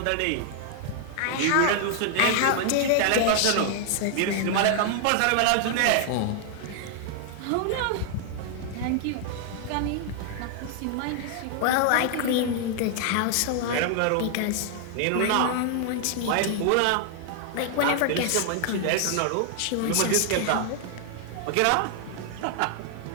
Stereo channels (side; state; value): both; different; correlation 0.00